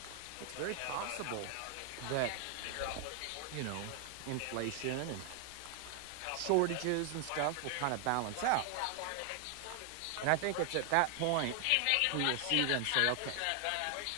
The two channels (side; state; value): both; different; correlation 0.00